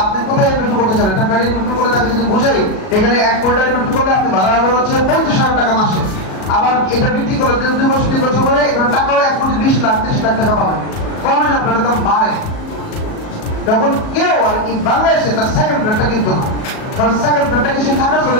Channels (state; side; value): late; right; 37 ms